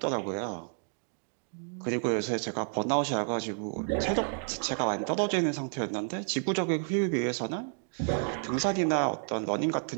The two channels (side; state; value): left; silent; 57 dB below the other